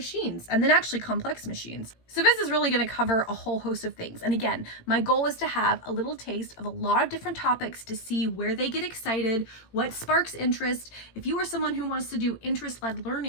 and then actually complex machines. So this is really going to cover a whole host of things. And again, my goal is to have a little taste of a lot of different topics to see where they get excited, what sparks interest. If you are someone who wants to do interest-led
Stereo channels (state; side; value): late; right; 18 ms